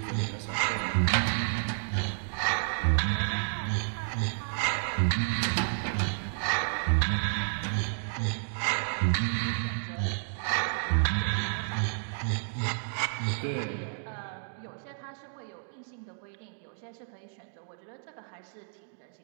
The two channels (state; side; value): silent; left; digital silence